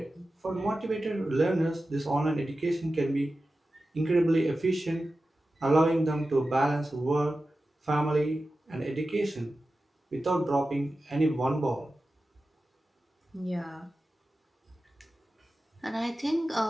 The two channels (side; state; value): both; normal; correlation 0.94